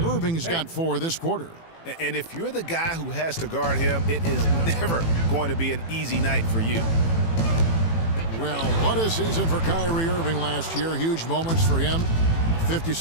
Irving's got 4 this quarter. And if you're the guy who has to guard him, it is never going to be an easy night for you. Well, what a season for Kyrie Irving last year. Huge moments for him.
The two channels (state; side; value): late; right; 18 ms